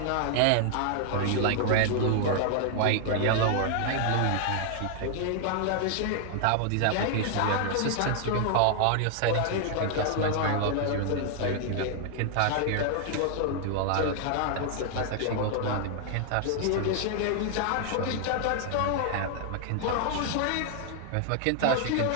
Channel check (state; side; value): different; both; correlation 0.00